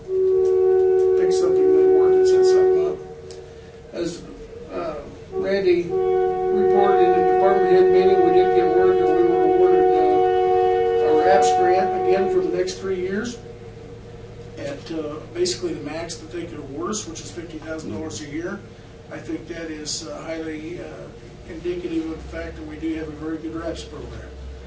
pick something that works and set something up. As Randy reported in the department head meeting, we did get word that we were awarded a RAPS grant again for the next 3 years at basically the max that they could award us, which is $50,000 a year. I think that is highly indicative of the fact that we do have a very good RAPS program.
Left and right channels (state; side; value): identical; both; correlation 1.00